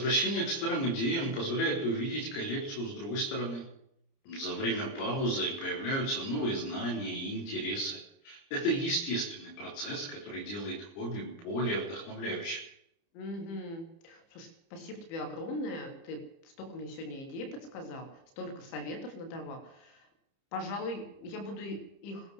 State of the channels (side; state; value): right; late; 30 ms